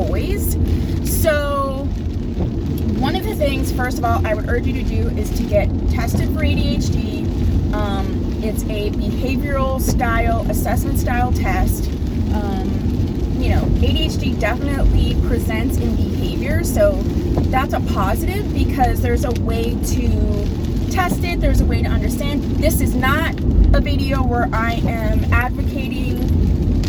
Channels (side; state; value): both; identical; correlation 1.00